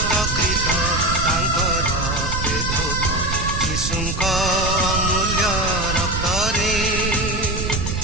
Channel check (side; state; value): right; noise; rumble, 3 dB below the sound